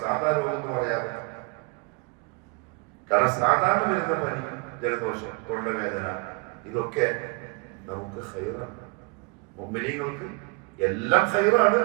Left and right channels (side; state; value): left; quieter; 29.3 dB